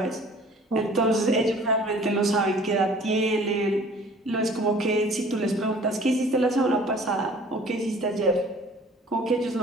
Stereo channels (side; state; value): both; normal; correlation 0.50